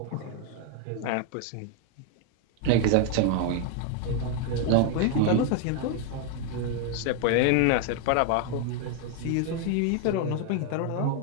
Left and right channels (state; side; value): different; both; correlation 0.01